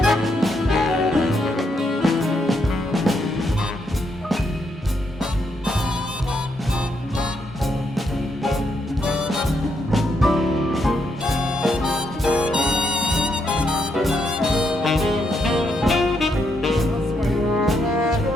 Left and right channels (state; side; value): normal; both; correlation 0.78